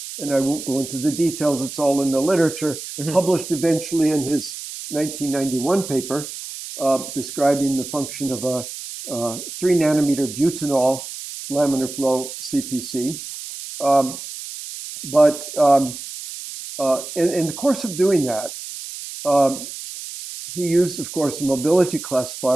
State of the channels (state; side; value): noise; right; hiss, 10 dB below the sound